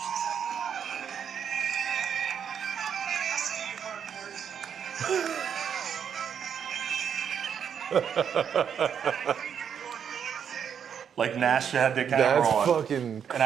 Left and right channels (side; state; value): left; quieter; 7.9 dB